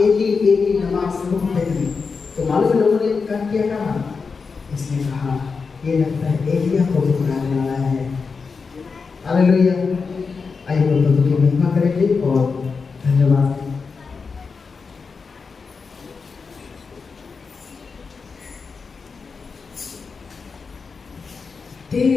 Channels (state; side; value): quieter; right; 5.0 dB